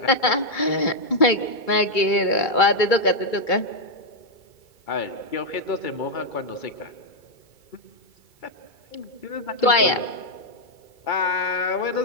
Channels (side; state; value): right; late; 2.3 ms